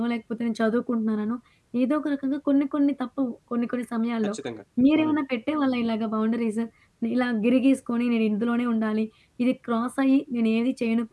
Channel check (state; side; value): identical; both; correlation 1.00